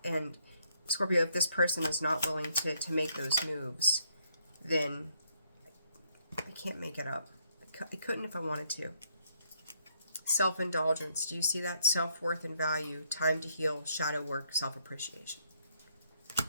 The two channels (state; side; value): inverted; both; correlation -0.71